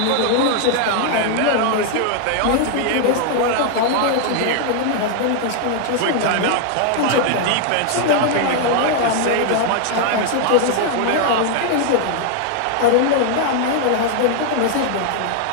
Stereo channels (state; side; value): different; both; correlation 0.00